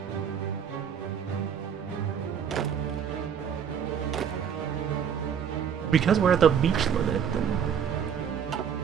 Because we're at the beach limit, then...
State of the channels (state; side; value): quieter; left; 7.9 dB